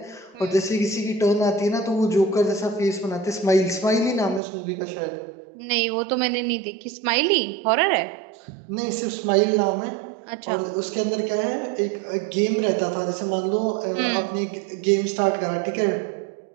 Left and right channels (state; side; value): drops out; left; at 4.4 s